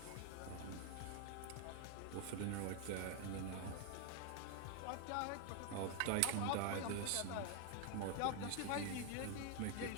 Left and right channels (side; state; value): both; different; correlation 0.01